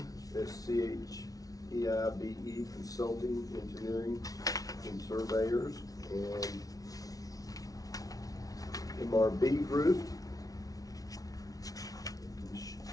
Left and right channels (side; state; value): right; late; 0.18 ms